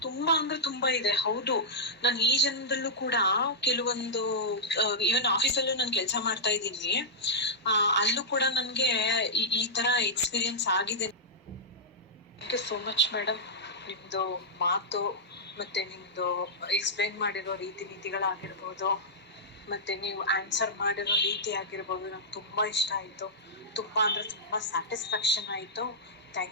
ತುಂಬಾ ಅಂದ್ರೆ ತುಂಬಾ ಇದೆ. ಹೌದು, ನಾನು ಈ ಜನ್ಮದಲ್ಲೂ ಕೂಡ ಕೆಲವೊಂದು ಈವನ್ ಆಫೀಸಲ್ಲೂ ನಾನು ಕೆಲಸ ಮಾಡ್ತಾ ಇದ್ದೀನಿ, ಅಲ್ಲೂ ಕೂಡ ನನ್ಗೆ ಈ ತರ ಎಕ್ಸ್ಪೀರಿಯನ್ಸ್ ಆಗಿದೆ. Thank you so much madam. ನಿಮ್ದು ಮಾತು ಮತ್ತೆ ನಿಮ್ದು ಎಕ್ಸ್ಪ್ಲೈನ್ ಮಾಡಿರೋ ರೀತಿ ನೀತಿಗಳಾಗಿರ್ಬೋದು, ಮತ್ತೆ ನೀವು ಆನ್ಸರ್ ಮಾಡಿರೋ ರೀತಿ ಆಗಿರ್ಬೋದು, ನಂಗೆ ತುಂಬಾ ಇಷ್ಟ ಆಯ್ತು. ತುಂಬಾ ಅಂದ್ರೆ ತುಂಬಾ ಸ್ಯಾಟಿಸ್ಫ್ಯಾಕ್ಷನ್ ಆಯ್ತು.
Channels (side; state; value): both; normal; correlation -0.09